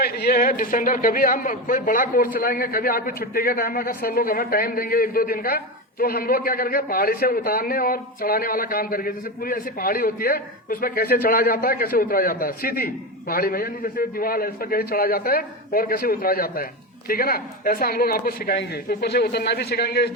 ये है डिसेंडर। कभी हम कोई बड़ा कोर्स चलाएंगे, कभी आपकी छुट्टी के टाइम अगर सर लोग हमें टाइम देंगे 1-2 दिन का, तो हम लोग क्या करेंगे, पहाड़ी से उतारने और चढ़ाने वाला काम करेंगे। जैसे पूरी ऐसी पहाड़ी होती है, उसमें कैसे चढ़ा जाता है, कैसे उतरा जाता है, सीधी पहाड़ी में, यानी जैसे दीवार है, इस पर कैसे चढ़ा जाता है और कैसे उतरा जाता है, ठीक है ना। ऐसा हम लोग आपको सिखाएंगे। ऊपर से उतरना भी सिखाएंगे इस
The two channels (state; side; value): normal; both; correlation 0.18